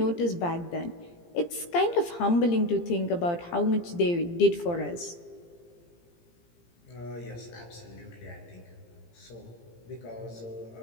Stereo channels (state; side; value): late; right; 17 ms